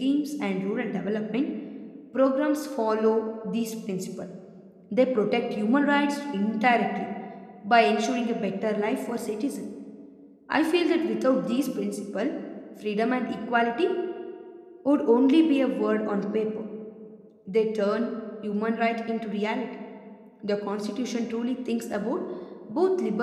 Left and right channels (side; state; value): both; identical; correlation 1.00